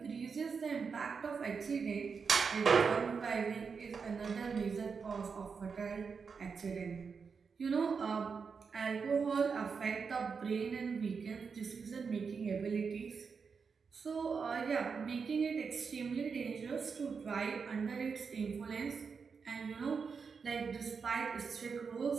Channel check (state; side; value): quieter; left; 5.6 dB